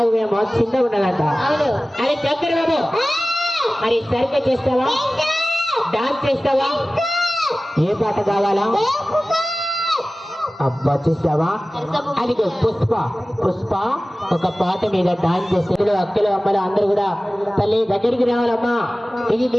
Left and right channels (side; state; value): both; normal; correlation 0.97